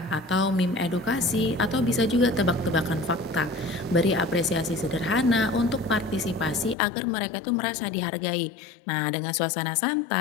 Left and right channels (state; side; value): drops out; right; at 6.8 s